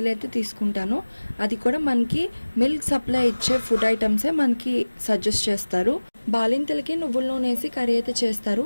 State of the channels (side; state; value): both; inverted; correlation -1.00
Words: అయితే తీసుకుంటాను. అది కూడా మనకి మిల్క్ సప్లై ఇచ్చే ఫుడ్ ఐటమ్సే మనకి సజెస్ట్ చేస్తారు. బాలింతలకి నువ్వుల నూనె వేసి కర్రీ అయితే చేస్తారు.